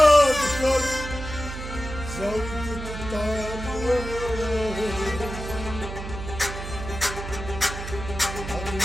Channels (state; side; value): noise; right; hum, 8 dB below the sound